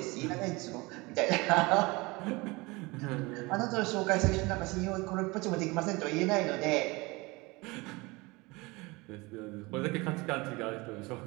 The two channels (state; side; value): quieter; left; 24.1 dB